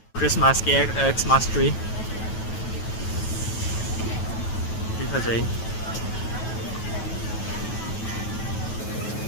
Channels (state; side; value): late; right; 9.2 ms